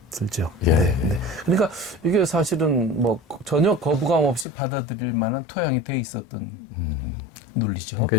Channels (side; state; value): right; drops out; at 4.5 s